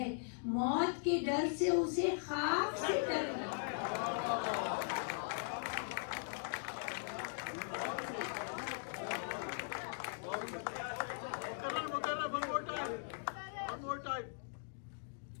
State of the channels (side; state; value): right; silent; digital silence